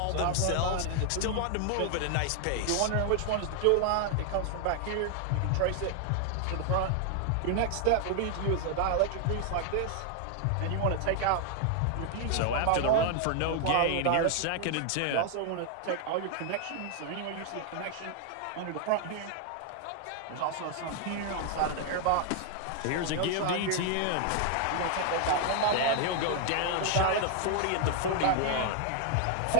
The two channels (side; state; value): both; different; correlation 0.00